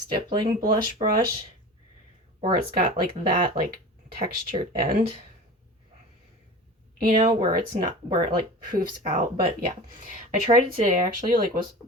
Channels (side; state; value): both; normal; correlation 0.34